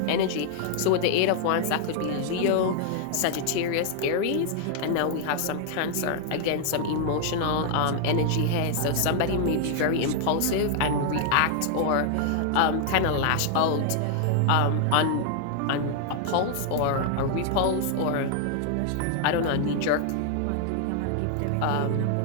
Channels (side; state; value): both; different; correlation 0.00